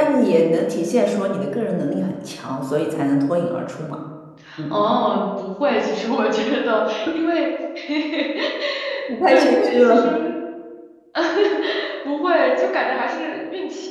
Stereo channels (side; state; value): both; identical; correlation 1.00